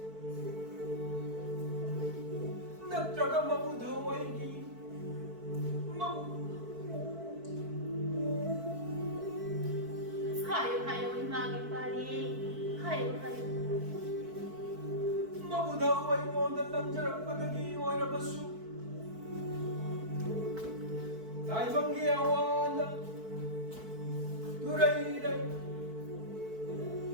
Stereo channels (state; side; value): late; left; 4.5 ms